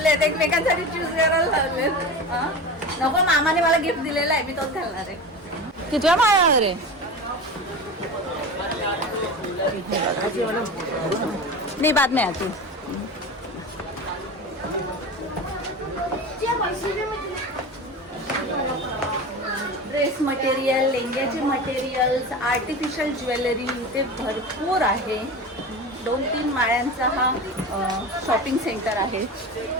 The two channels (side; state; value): both; normal; correlation 0.29